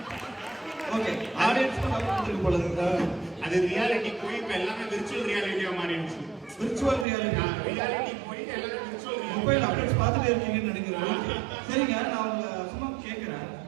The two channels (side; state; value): left; drops out; at 7.1 s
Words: ஓகே, ஆடியன்ஸ் வந்துருக்கு போல இருக்கு. அது ரியாலிட்டி போய் இப்ப எல்லாமே விர்ச்சுவல் ரியாலிட்டியா மாறிடுச்சு. விர்ச்சுவல் ரியாலிட்டி ரியாலிட்டி போய் எல்லாமே விர்ச்சுவல் மொபைல் அப்டேட்ஸ் பார்த்துட்டே இருக்கீங்கன்னு நினைக்கிறேன். சரிங்க, நான் உங்களை சும்மா கேட்குறேன்.